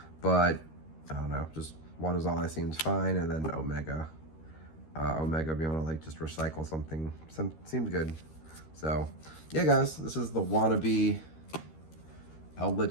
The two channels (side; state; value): right; late; 13 ms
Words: but I don't know, just 1 is all that seems fine. And then Omega. Omega being able to like just recycle something seems good. So yeah, guys, this is the Wannabee